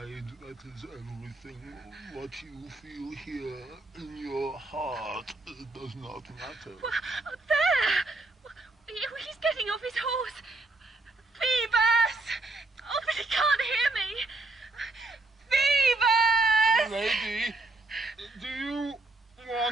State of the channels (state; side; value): quieter; left; 3.1 dB